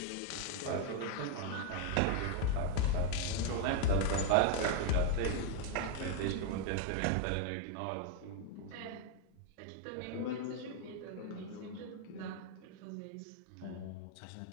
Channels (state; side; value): different; both; correlation 0.00